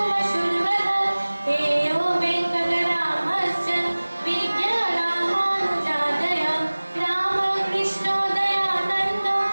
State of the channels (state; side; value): inverted; both; correlation -1.00